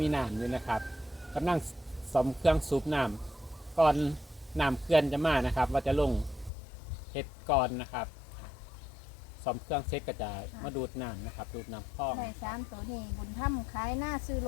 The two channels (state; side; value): drops out; right; at 6.5 s